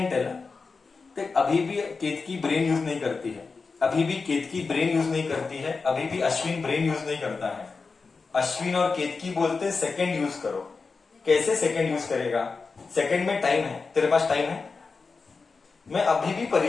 tell. अभी भी केतकी ब्रेन यूज नहीं करती है, अभी भी Ashwin brain use नहीं करता है. अश्विन और केतकी बोलते सेकंड यूज करो. कैसे सेकंड यूज करेगा? सेकंड में टाइम है, तेरे पास टाइम है. मैं अभी भी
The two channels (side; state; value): right; quieter; 4.5 dB